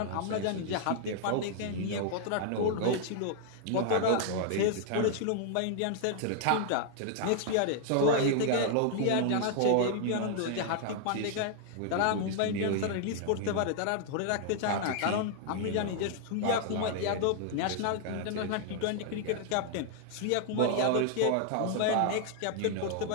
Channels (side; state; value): both; different; correlation 0.00